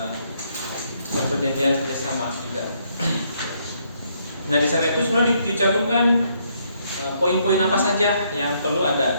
perjanjian kerjasama juga. Nah di sana itu sebenarnya dicantumkan poin-poin apa saja yang perlu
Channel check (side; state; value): both; inverted; correlation -0.72